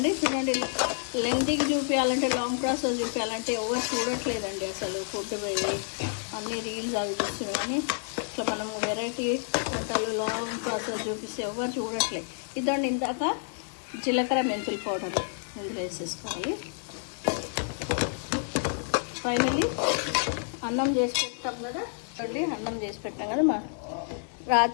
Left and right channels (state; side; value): silent; right; 59 dB below the other